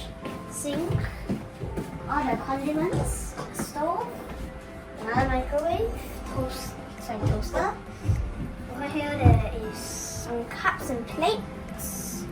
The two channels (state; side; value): identical; both; correlation 1.00